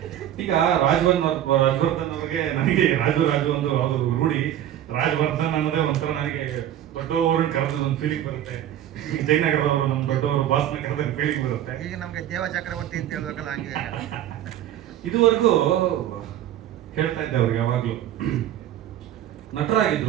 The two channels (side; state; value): left; quieter; 11.6 dB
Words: ಈಗ ರಾಜವರ್ಧನ್ ಅವ್ರಿಗೆ ನನಗೆ ರಾಜು ಒಂದು ರೂಢಿ. ರಾಜವರ್ಧನ್ ಅನ್ನೋದೇ ಒಂಥರ ನನಗೆ ದೊಡ್ಡವ್ರನ್ನ ಕರೆದ ಒಂದು ಫೀಲಿಂಗ್ ಬರುತ್ತೆ. ಜಯನಗರದವರು ನಮ್ಮ ದೊಡ್ಡವರು ಬಾಸ್ನ ಕರೆದ ಫೀಲಿಂಗ್ ಬರುತ್ತೆ. ಈಗ ನಮ್ಗೆ ದೇವ ಚಕ್ರವರ್ತಿ ಅಂತ ಹೇಳ್ಬೇಕಲ್ಲ, ಹಂಗೆ ಇದುವರೆಗೂ ಹೇಳ್ತಾ ಇದ್ದೆ ಅವ್ರಿಗೆ. ಯಾವಾಗ್ಲೂ